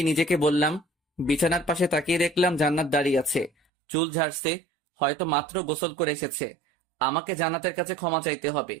নিজেকে বললাম। বিছানার পাশে তাকিয়ে দেখলাম জান্নাত দাঁড়িয়ে আছে, চুল ঝাড়ছে, হয়তো মাত্র গোসল করে এসেছে। আমাকে জান্নাতের কাছে ক্ষমা চাইতে হবে।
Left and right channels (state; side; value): drops out; left; at 3.5 s